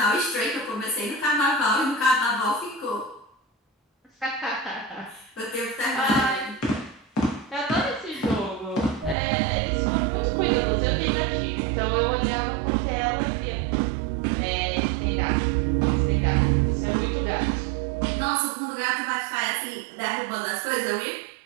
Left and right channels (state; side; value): drops out; left; at 9.2 s